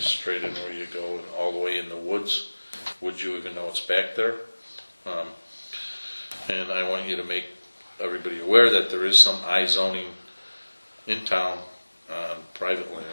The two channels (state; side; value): inverted; both; correlation -1.00